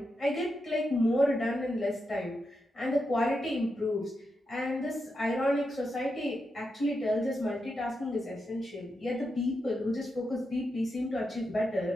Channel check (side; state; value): both; normal; correlation 0.86